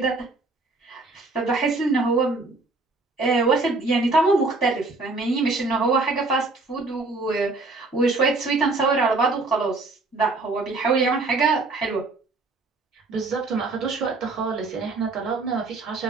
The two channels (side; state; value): left; quieter; 3.5 dB